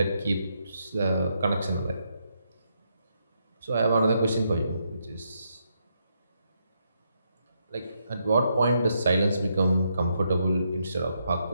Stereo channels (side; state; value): both; inverted; correlation -0.79